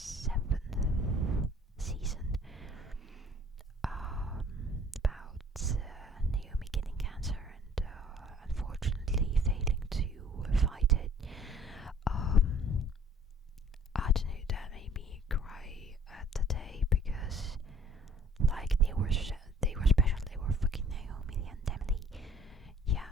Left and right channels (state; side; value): normal; both; correlation 0.54